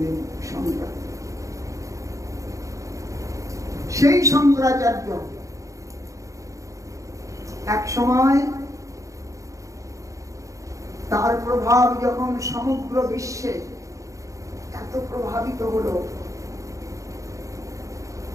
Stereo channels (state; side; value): late; left; 0.16 ms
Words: শঙ্কর। সেই শঙ্করাচার্য এক সময় তার প্রভাব যখন সমগ্র বিশ্বে এত প্রভাবিত হলো,